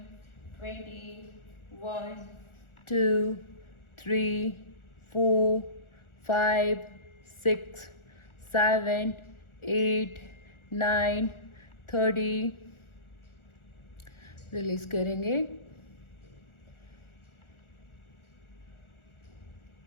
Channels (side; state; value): right; late; 1.4 ms